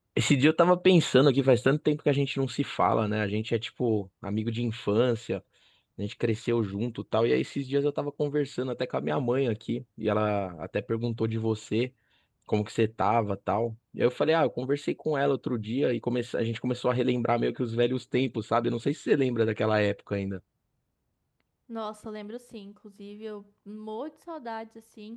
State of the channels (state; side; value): identical; both; correlation 1.00